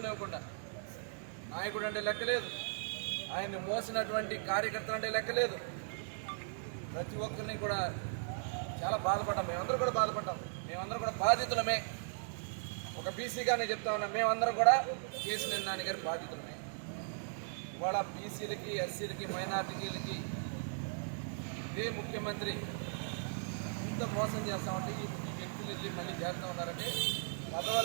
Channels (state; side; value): silent; left; digital silence